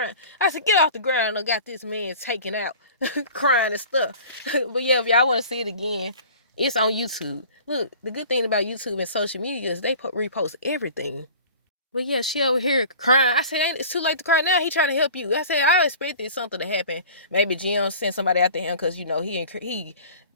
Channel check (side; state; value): both; inverted; correlation -0.43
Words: I said, get off the ground. I got this man taken out, crying and stuff. But yeah, if y'all want to see it again, it's on YouTube. Look, the good thing about YouTube and social media is they repost everything. But yeah, she over here crying. I said, it's too late to cry now. He trying to help you. I said, I expected something to happen. Maybe Jim sent somebody after him because, you know,